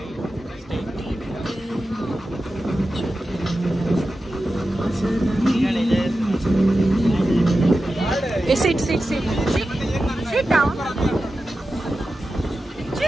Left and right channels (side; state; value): both; normal; correlation 0.92